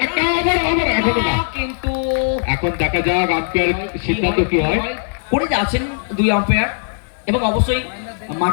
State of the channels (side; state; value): right; silent; 67 dB below the other